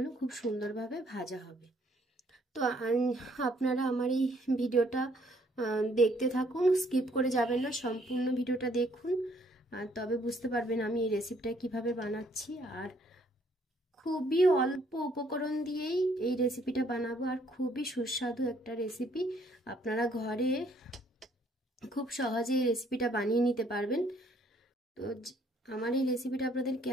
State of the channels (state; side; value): normal; both; correlation 0.65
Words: খুব সুন্দরভাবে ভাজা হবে। তো আপনারা আমার এই ভিডিওটা দেখতে থাকুন, স্কিপ করে যাবেন না, সম্পূর্ণ ভিডিওটা দেখুন। তবে বুঝতে পারবেন আমি এই রেসিপিটা কিভাবে বানাচ্ছি। আর খুবই অল্প উপকরণ দিয়েই এই রেসিপিটা বানাবো, আর খুবই সুস্বাদু একটা রেসিপি। আপনারা ঘরে খুব সহজে এই রেসিপিটা বানিয়ে নিতে পারবেন। তো আমার এই রেসিপিটা আপনাদের